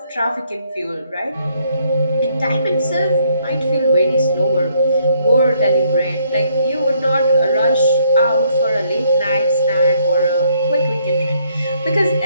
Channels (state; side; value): inverted; both; correlation -0.69